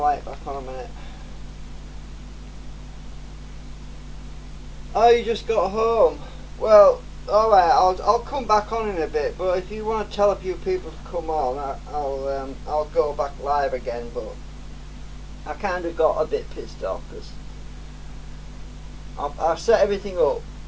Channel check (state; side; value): identical; both; correlation 1.00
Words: back on a minute. Oh, you just got home. Well, alright, I'll come back on in a bit, but if you want to tell a few people to come on, I'll go back live again, but I kind of got a bit pissed off because I set everything up.